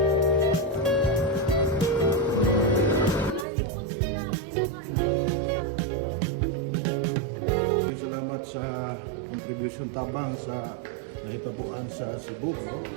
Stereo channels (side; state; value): left; drops out; at 3.5 s